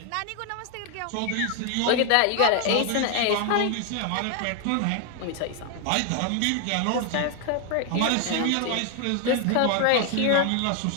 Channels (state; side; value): different; both; correlation 0.00